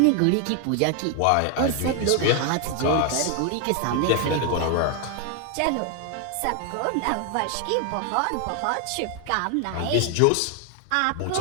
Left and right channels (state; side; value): different; both; correlation 0.01